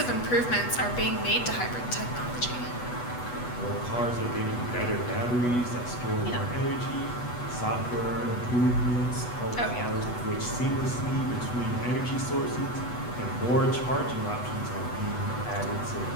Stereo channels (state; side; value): late; right; 8.2 ms